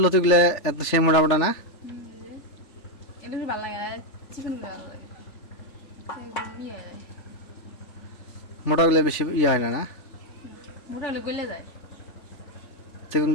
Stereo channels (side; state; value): right; late; 3.5 ms